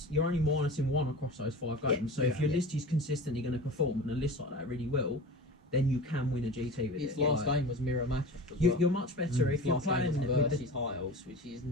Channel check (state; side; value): normal; both; correlation 0.34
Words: you're only minusing 1 across those 5 Yeah, games. So if your yeah. list is consistently going to perform, and a list like that really will, then you can win a GT with Its it. last Like, game was mirror matchup as you, well. you're much better if Its you're last game playing was with versus the, high elves, which is